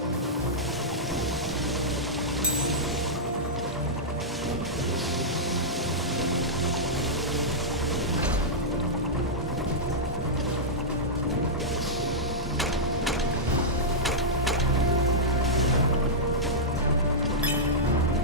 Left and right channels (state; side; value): normal; both; correlation -0.11